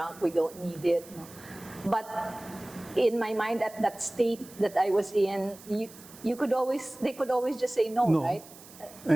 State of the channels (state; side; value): noise; right; hiss, 20 dB below the sound